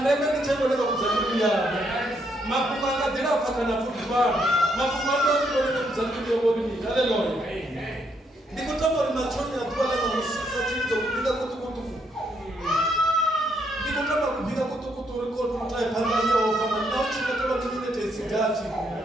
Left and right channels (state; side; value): normal; both; correlation 0.74